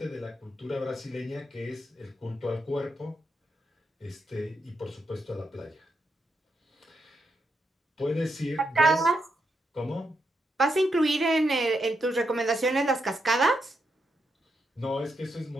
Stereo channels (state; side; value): normal; both; correlation 0.82